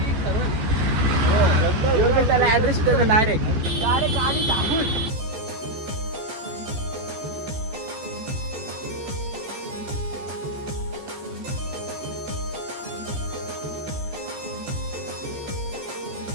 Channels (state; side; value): late; left; 14 ms